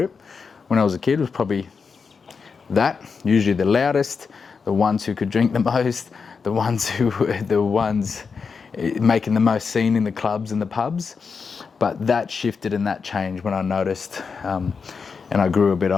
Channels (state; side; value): quieter; right; 5.4 dB